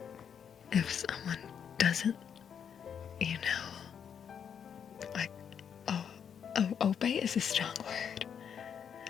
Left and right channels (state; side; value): quieter; right; 7.8 dB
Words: If someone doesn't, obey is a strong word,